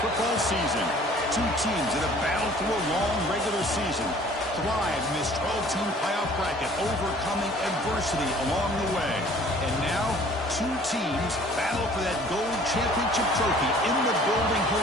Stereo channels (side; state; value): both; normal; correlation 0.52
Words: football season. Two teams that have battled through a long regular season, thrived in this 12-team playoff bracket, overcoming adversity along the way. And now, two teams battle for that gold championship trophy in the building